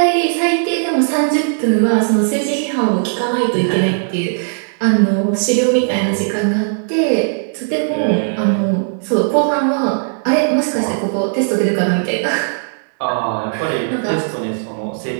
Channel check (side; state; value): left; silent; digital silence